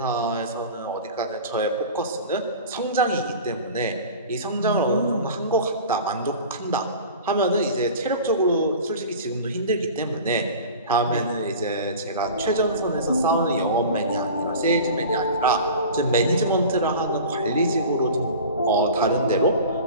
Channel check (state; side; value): inverted; both; correlation -0.38